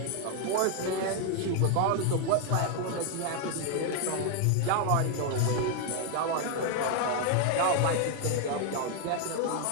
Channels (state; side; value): different; both; correlation 0.00